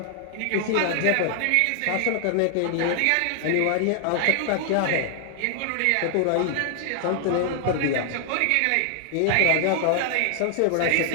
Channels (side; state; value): both; different; correlation 0.00